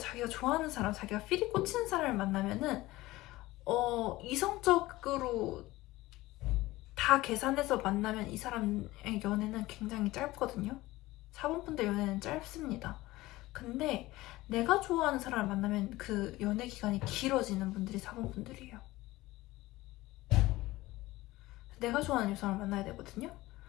좋아하는 사람, 자기가 필이 꽂히는 사람을 만나면은 이성적으로 다 계산해서 만나면 이 사람의 연애는 굉장히 짧거든요. 4번 분들 연애는 짧습니다. 근데 내가 좋아하는 사람을 만나면 그 연애 기간이 길어지는 분들이 4번 분들이에요. 내가 좋아하는 사람을 만나야 되거든요.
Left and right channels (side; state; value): right; quieter; 18.5 dB